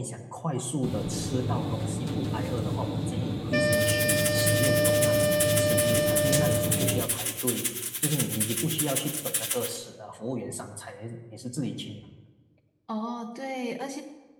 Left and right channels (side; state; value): both; identical; correlation 1.00